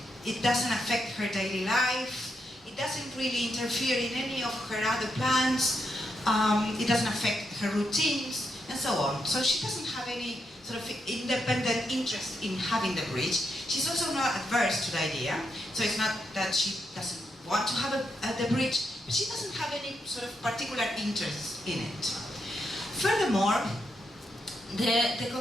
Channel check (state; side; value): normal; both; correlation 0.82